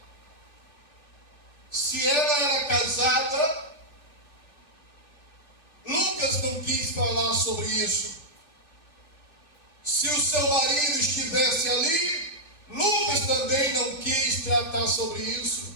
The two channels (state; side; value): late; right; 3.4 ms